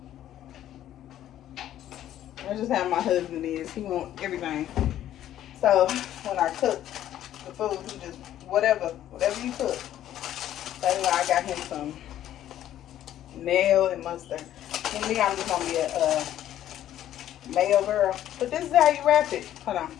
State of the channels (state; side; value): quieter; right; 12.0 dB